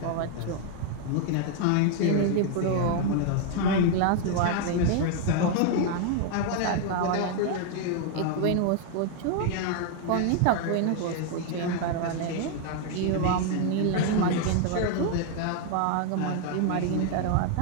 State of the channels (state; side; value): different; both; correlation 0.00